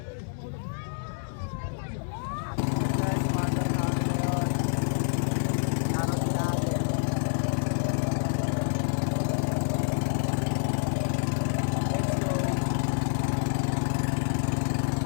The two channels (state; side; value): silent; right; 60 dB below the other